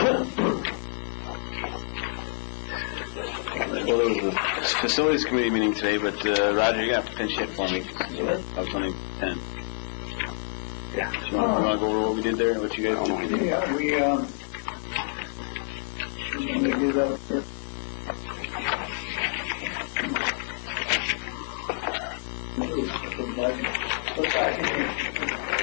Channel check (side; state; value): right; silent; 56 dB below the other